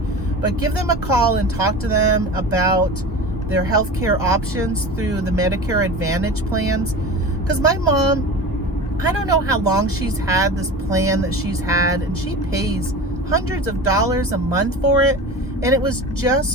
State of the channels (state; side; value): normal; both; correlation 0.32